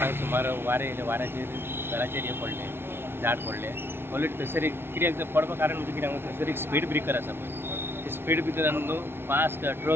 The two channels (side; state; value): left; late; 0.11 ms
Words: सुमार वारे येयले वाऱ्याचेर घराचेर हे पडले झाड पडले ऑलरेडी थंयसर कित्याक पडपा कारण म्हणजे कित्याक थंयसर एक स्पीड ब्रेकर आसा पळय ते स्पीड ब्रेकरान न्हू फास्ट